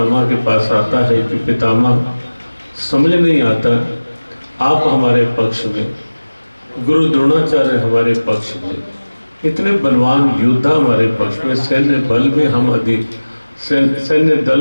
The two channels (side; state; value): both; inverted; correlation -1.00